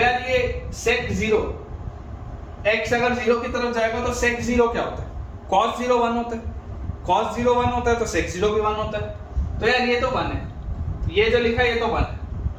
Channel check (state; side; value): identical; both; correlation 1.00